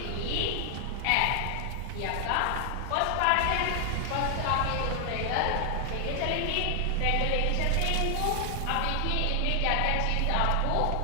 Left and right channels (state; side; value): different; both; correlation 0.00